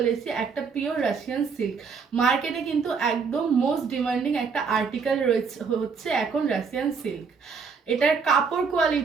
এসেছি একটা পিওর রাশিয়ান সিল্ক। মার্কেটে কিন্তু একদম মোস্ট ডিমান্ডিং একটা আর্টিকেল রয়েছে হচ্ছে এখন রাশিয়ান সিল্ক। এটার কাপড়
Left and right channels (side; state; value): left; quieter; 5.5 dB